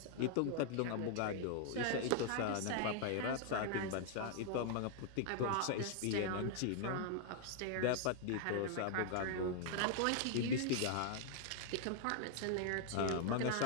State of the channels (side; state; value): both; different; correlation 0.00